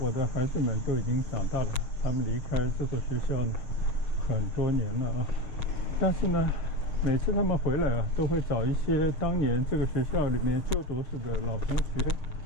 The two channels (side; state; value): right; late; 6.8 ms